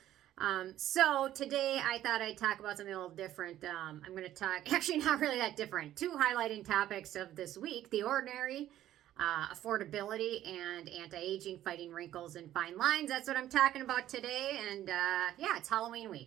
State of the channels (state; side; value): quieter; left; 12.8 dB